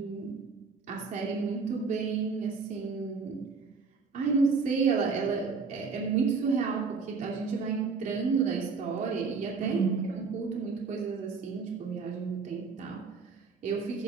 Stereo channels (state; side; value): quieter; left; 4.9 dB